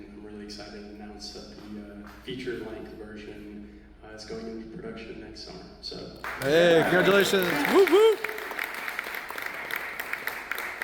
I'm really excited to announce that the feature-length version is going into production next summer. So, hey, congratulations! Woo woo!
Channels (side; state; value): both; identical; correlation 1.00